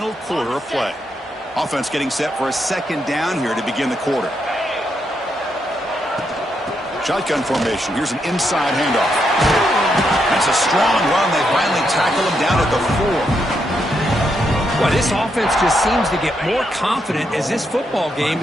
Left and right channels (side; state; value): both; normal; correlation 0.80